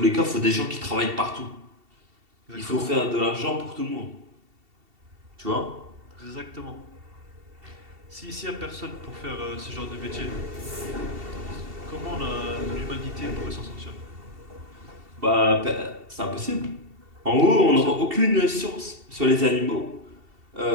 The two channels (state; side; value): late; left; 2.7 ms